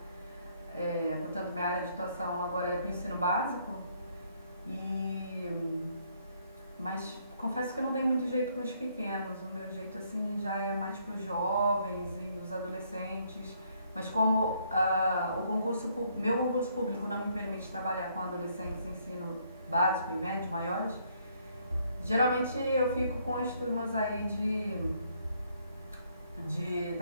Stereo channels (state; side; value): inverted; both; correlation -0.69